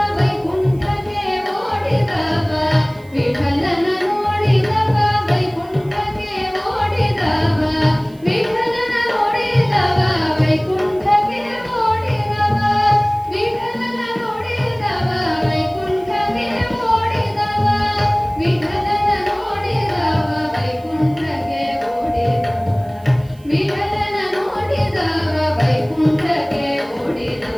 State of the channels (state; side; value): noise; right; hiss, 29 dB below the sound